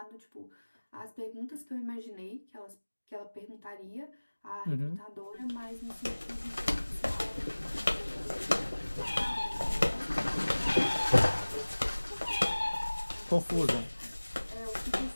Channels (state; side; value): inverted; both; correlation -1.00